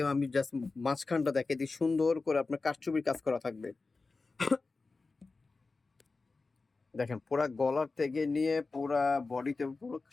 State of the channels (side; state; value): right; quieter; 3.9 dB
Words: আমি জাস্ট মাঝখানটা দেখে দিই। সুন্দর করে আপনার কারচুপির কাজ করা থাকবে। দেখেন, পুরা গলার থেকে নিয়ে পুরা বডিতে পুরো